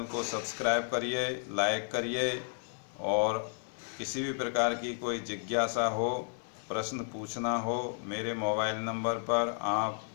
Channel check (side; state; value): right; silent; 56 dB below the other